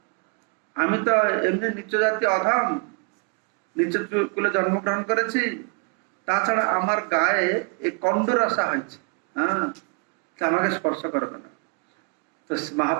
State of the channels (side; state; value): left; quieter; 35.1 dB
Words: আমি তো এমনি নিচ জাতি অধম, নিচের কুলে জন্মগ্রহণ করেছি, তাছাড়া আমার গায়ে এই কন্ডরসা হয়েছে। হ্যাঁ, আমাকে স্পর্শ করবে না। তো